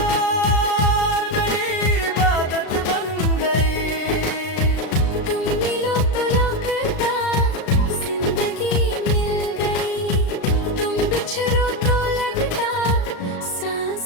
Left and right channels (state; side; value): late; right; 36 ms